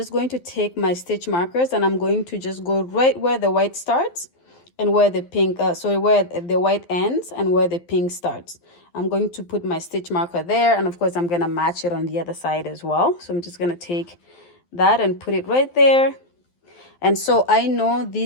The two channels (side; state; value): right; late; 12 ms